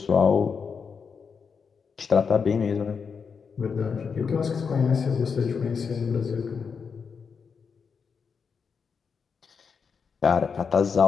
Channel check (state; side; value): quieter; right; 5.9 dB